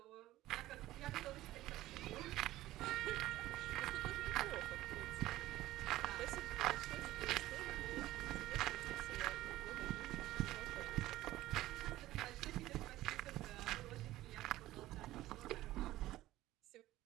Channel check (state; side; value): quieter; left; 15.9 dB